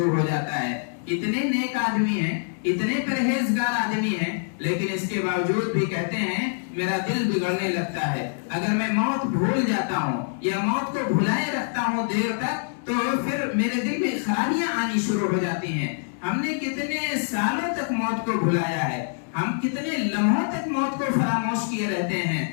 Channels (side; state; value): right; silent; digital silence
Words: ہو جاتا ہے۔ اتنے نیک آدمی ہیں، اتنے پرہیزگار آدمی ہیں، لیکن اس کے باوجود بھی کہتے ہیں میرا دل بگڑنے لگتا ہے۔ اگر میں موت بھول جاتا ہوں یا موت کو بھلائے رکھتا ہوں دیر تک تو پھر میرے دل میں خرابیاں آنی شروع ہو جاتی ہیں۔ ہم نے کتنے سالوں تک موت کو بھلایا ہے، ہم کتنے لمحوں تک موت کو فراموش کیے رہتے ہیں